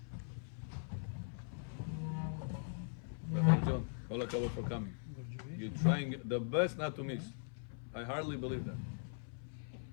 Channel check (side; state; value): right; silent; 51 dB below the other